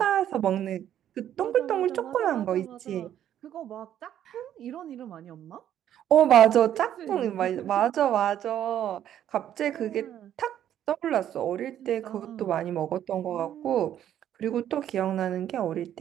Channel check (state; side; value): quieter; left; 10.8 dB